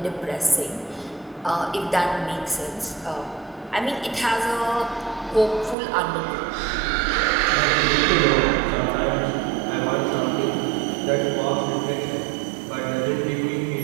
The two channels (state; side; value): drops out; left; at 5.8 s